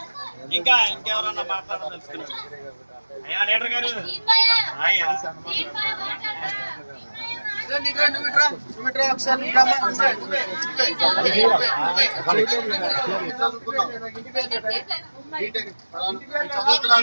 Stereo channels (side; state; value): both; inverted; correlation -1.00